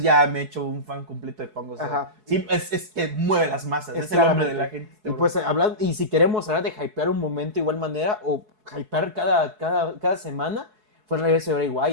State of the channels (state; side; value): late; left; 4.7 ms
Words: ya me he hecho un fan completo de Punk. O sea, sí, es que mueve las masas, es el hombre de la gente. Y pues y si queremos hablar de hypear un momento de igual manera, o hypear cada semana, fue el regreso de Bray